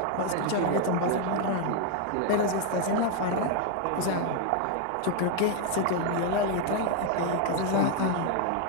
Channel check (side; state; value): both; different; correlation 0.01